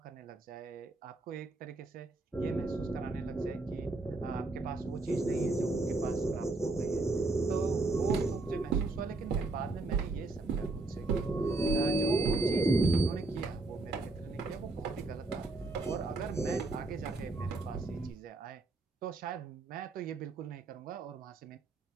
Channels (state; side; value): quieter; left; 3.1 dB